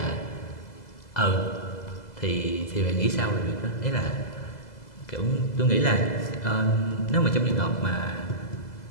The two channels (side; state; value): right; late; 2.0 ms